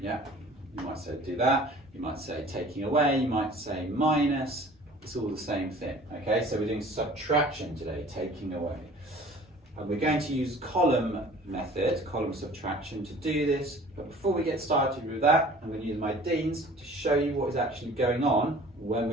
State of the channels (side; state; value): both; normal; correlation 0.47